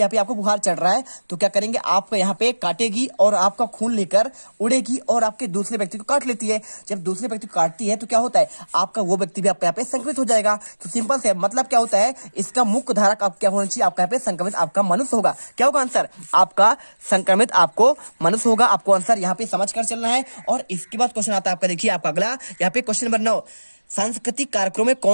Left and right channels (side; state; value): both; inverted; correlation -1.00